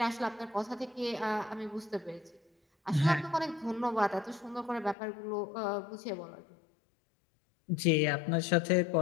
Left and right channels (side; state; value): right; drops out; at 5.0 s